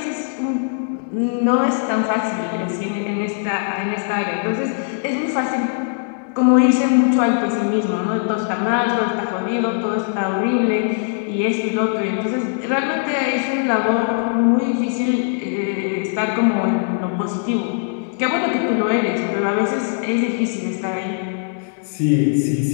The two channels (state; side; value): silent; right; digital silence